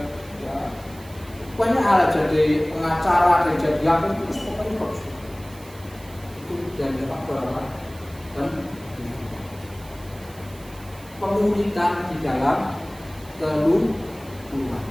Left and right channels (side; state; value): right; noise; hiss, 22 dB below the sound